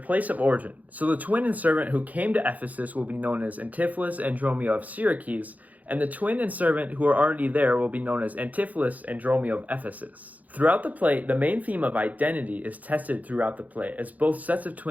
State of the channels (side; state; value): left; late; 0.078 ms